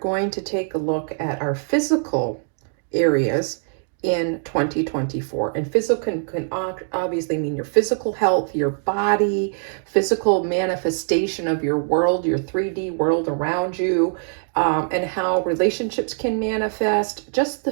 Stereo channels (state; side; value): silent; left; 64 dB below the other